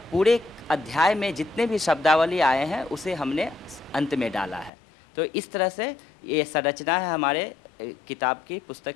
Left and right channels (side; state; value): right; drops out; at 4.7 s